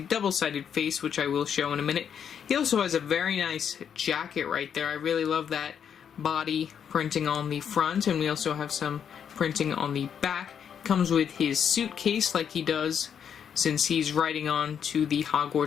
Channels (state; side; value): quieter; right; 8.0 dB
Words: double-sided face, which I will show in a minute. He also has a very nice jacket right there. I really love that body printing on the front, and we also have some printing on the back. Comes with his suitcase like he does since he's riding on to the